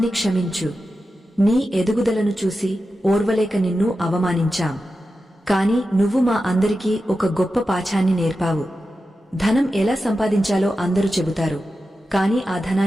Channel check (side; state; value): both; normal; correlation 0.91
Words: క్షమించు. నీ ఎదుగుదలను చూసి ఓర్వలేక నిన్ను అవమానించాం. కాని నువ్వు మా అందరికీ ఒక గొప్ప పాఠాన్ని నేర్పావు. ధనం ఎలా సంపాదించాలో అందరూ చెబుతారు, కాని ఆ